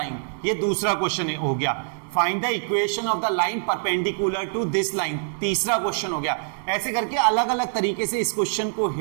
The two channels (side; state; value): left; silent; digital silence